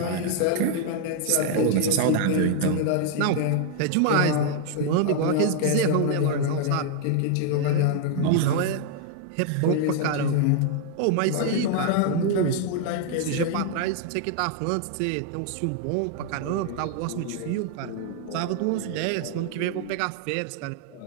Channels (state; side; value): different; both; correlation 0.00